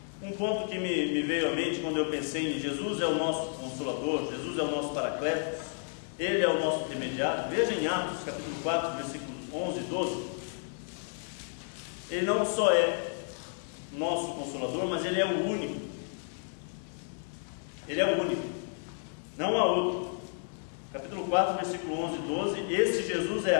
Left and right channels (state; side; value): silent; right; 57 dB below the other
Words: um ponto que me veio à mente quando eu pensei em Jesus é o nosso Consolador, Jesus é o nosso Paracletos, Ele é o nosso intermediário. Veja em Atos capítulo 4, versículos 11 e 12. Ele não só é nosso Consolador, mas Ele é o único. Ele é o único, não há outro. Capítulo 4, versículo 11 e 12. Este Jesus é